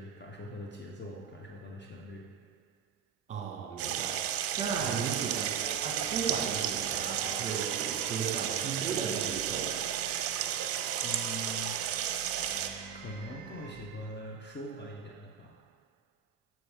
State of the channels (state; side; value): quieter; left; 7.8 dB